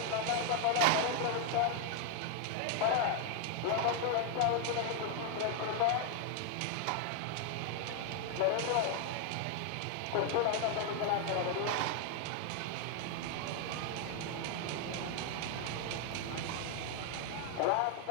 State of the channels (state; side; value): different; both; correlation 0.00